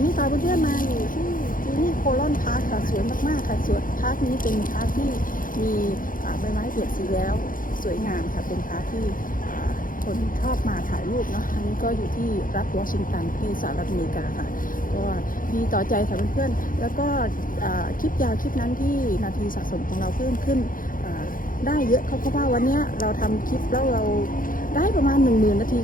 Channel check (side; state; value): right; late; 0.40 ms